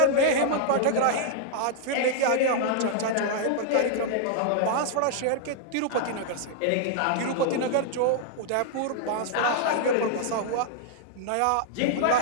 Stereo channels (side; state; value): both; different; correlation -0.01